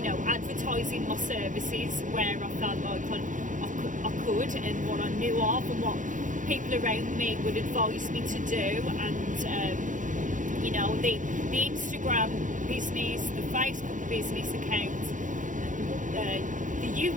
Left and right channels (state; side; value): late; left; 0.37 ms